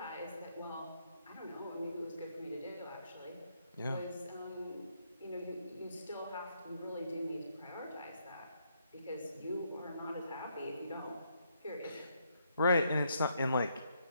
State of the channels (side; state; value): both; inverted; correlation -0.74